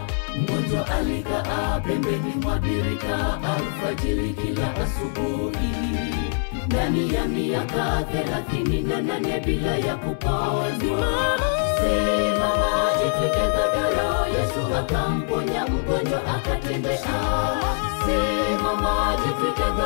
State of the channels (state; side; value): silent; right; 63 dB below the other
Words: Mgonjwa alikaa pembeni mwa birika alfajiri kila asubuhi, ndani ya miaka 38 bila ya kupona. Simama, jitwike godoro, Yesu akamponya mgonjwa akatembea. Simama, jitwike